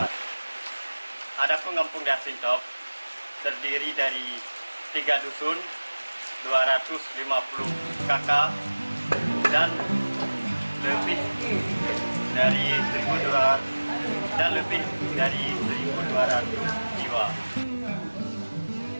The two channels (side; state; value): both; inverted; correlation -1.00